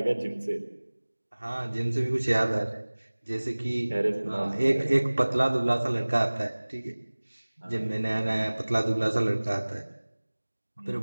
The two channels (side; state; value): both; inverted; correlation -1.00